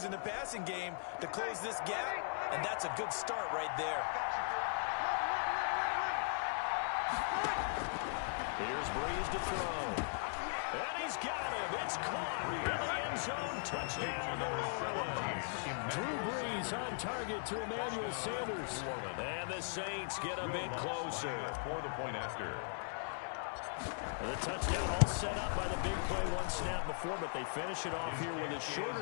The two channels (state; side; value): silent; right; 52 dB below the other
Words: in the passing game to close this gap, and that's a good start right there. Here's Breeze to throw. And he's got him. It's caught in the end zone. Touchdown, New Orleans. Drew Brees on target to Emmanuel Sanders. And the Saints get a bit closer. For the point after. The touchdown all set up by the big play one snap before, but they finish it off here with a